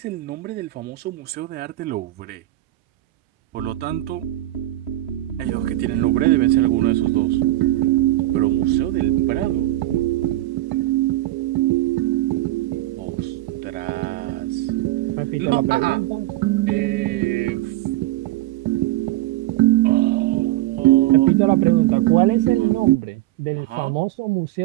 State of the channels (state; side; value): quieter; left; 16.2 dB